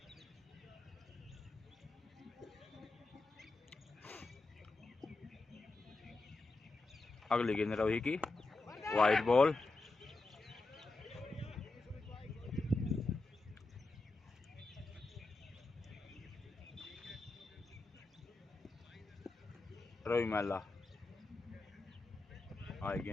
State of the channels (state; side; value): quieter; right; 3.3 dB